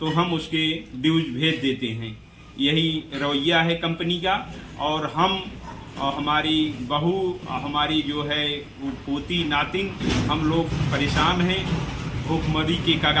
हम उसके ड्यूज भेज देते हैं। यही रवैया है कंपनी का। और हम और हमारी बहू, हमारी जो है वो पोती नातिन, हम लोग परेशान हैं, भूखमरी के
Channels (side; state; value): both; identical; correlation 1.00